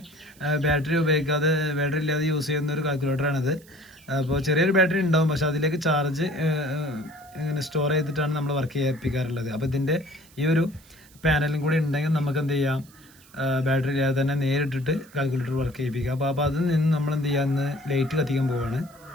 ബാറ്ററി ഉപയോഗിക്കാതെ, ബാറ്ററി ഇല്ലാതെ യൂസ് ചെയ്യുന്ന ഒരു കാൽക്കുലേറ്ററാണിത്. അപ്പോൾ ചെറിയൊരു ബാറ്ററി ഉണ്ടാവും, പക്ഷെ അതിലേക്ക് ചാർജ് ഇങ്ങനെ സ്റ്റോർ ചെയ്തിട്ടാണ് നമ്മൾ വർക്ക് ചെയ്യിപ്പിക്കാറുള്ളത്. അപ്പോൾ ഇതിൻ്റെ ഈ ഒരു പാനലും കൂടി ഉണ്ടെങ്കിൽ നമുക്ക് എന്ത് ചെയ്യാം, ബാറ്ററി ഇല്ലാതെ തന്നെ നേരിട്ടിട്ട് കാൽക്കുലേറ്റർ വർക്ക് ചെയ്യിപ്പിക്കുക. അപ്പോൾ അതിൽ നിന്ന് നമ്മൾ എന്ത് ചെയ്യാമെന്ന് ലൈറ്റ് കത്തിക്കാൻ പോവുകയാണ്.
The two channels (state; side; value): noise; right; hiss, 26 dB below the sound